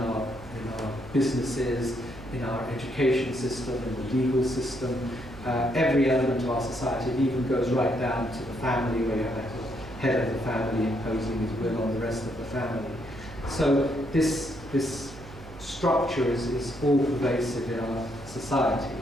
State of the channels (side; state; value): right; noise; hum, 17 dB below the sound